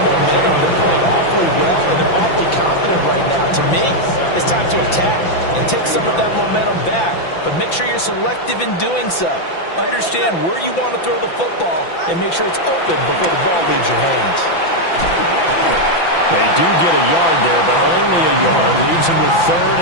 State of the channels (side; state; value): right; late; 5.9 ms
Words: momentum. They're playing awfully well, and they're awfully confident right now. To me, it's time to attack and take some of that momentum back. But make sure you're selective in doing so. Understand where you want to throw the football and make sure it's open before the ball leaves your hands. They do get a yard there, but only a yard. Leaves them with 3rd